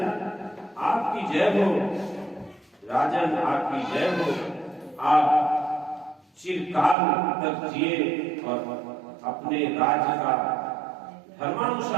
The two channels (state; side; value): drops out; left; at 7.0 s